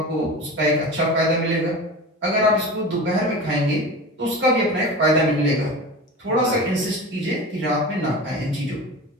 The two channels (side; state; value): both; normal; correlation 0.31